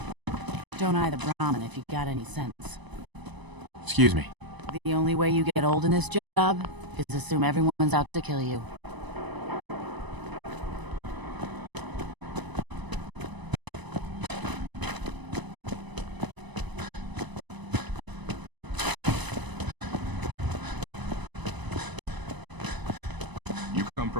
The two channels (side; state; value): left; late; 1.0 ms